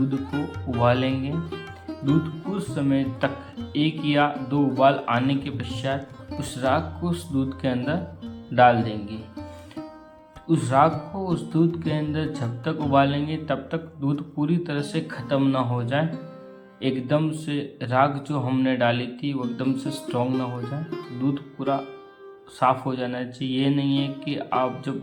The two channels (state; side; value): identical; both; correlation 1.00